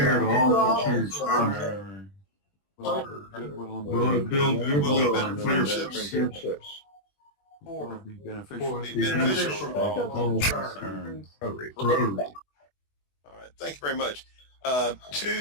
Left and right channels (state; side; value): late; right; 21 ms